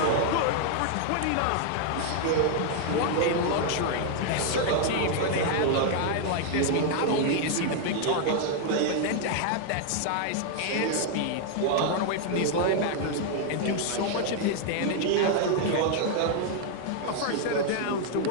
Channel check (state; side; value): different; both; correlation 0.00